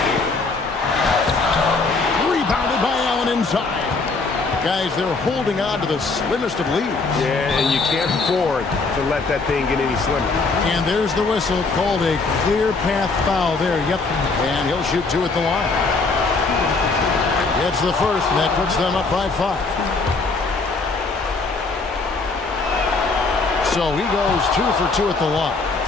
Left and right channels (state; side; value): quieter; right; 3.9 dB